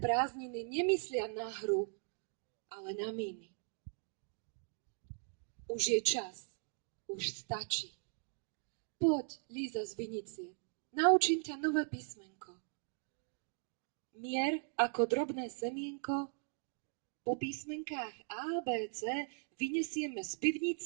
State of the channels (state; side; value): silent; left; 52 dB below the other